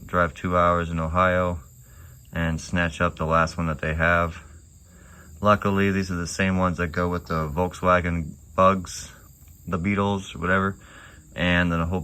drive 2 hours in Ohio and snatch up the last one that they have. Luckily, these are the same ones that go with the Volkswagen Bugs, the Beetles, or whatever, and then a whole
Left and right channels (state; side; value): identical; both; correlation 1.00